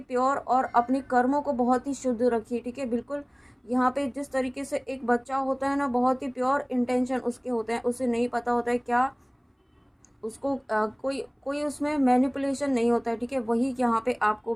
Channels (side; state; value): both; identical; correlation 1.00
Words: प्योर और अपने कर्मों को बहुत ही शुद्ध रखिए। ठीक है, बिल्कुल यहाँ पे जिस तरीके से एक बच्चा होता है ना, बहुत ही प्योर इंटेंशन उसके होते हैं, उसे नहीं पता होता है क्या उसको कोई कोई उसमें मैनिपुलेशन नहीं होता है। ठीक है, वही यहाँ पे आपको